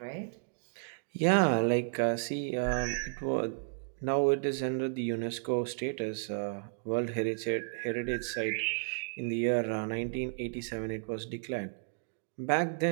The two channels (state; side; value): silent; left; digital silence